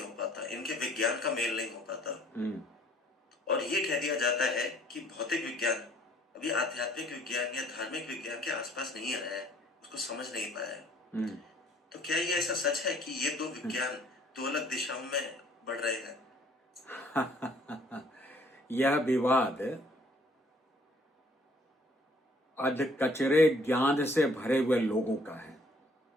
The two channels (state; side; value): normal; both; correlation 0.59